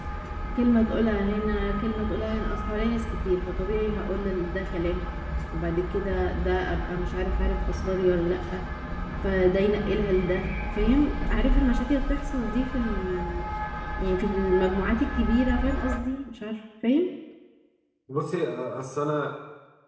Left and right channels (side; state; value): both; identical; correlation 1.00